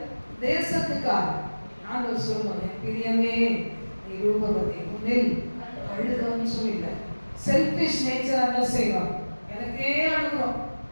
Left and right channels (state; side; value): inverted; both; correlation -1.00